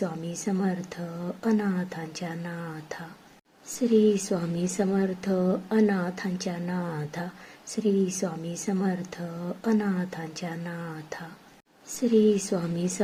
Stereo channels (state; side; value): identical; both; correlation 1.00